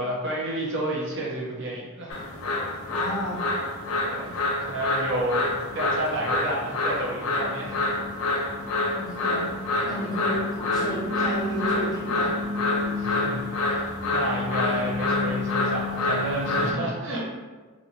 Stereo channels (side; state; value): both; normal; correlation 0.12